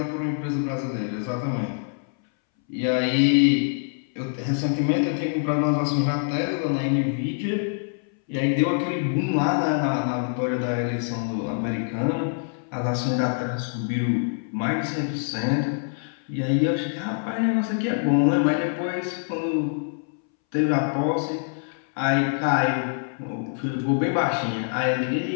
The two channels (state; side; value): silent; right; 62 dB below the other